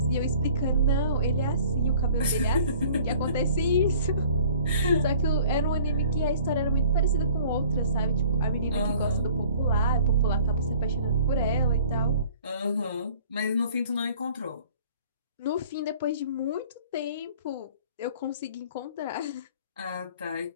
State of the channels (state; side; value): inverted; both; correlation -0.51